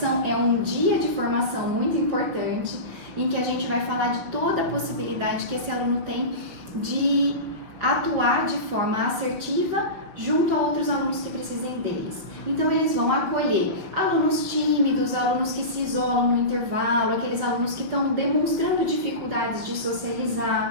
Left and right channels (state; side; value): late; left; 5.7 ms